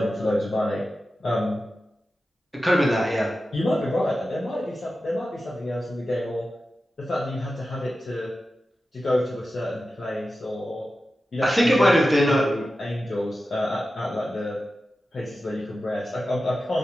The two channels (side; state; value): both; normal; correlation 0.93